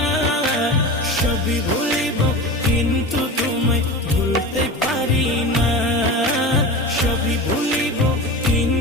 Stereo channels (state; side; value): normal; both; correlation 0.29